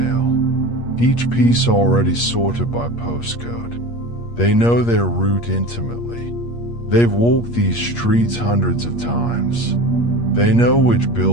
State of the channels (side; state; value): right; late; 8.5 ms